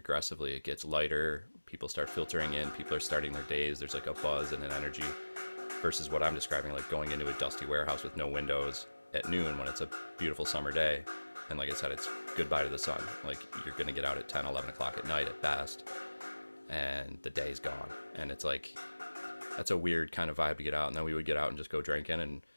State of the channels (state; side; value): inverted; both; correlation -1.00